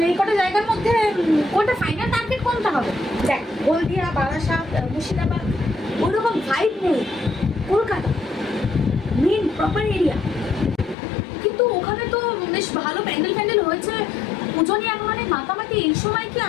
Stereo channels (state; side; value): drops out; right; at 11.0 s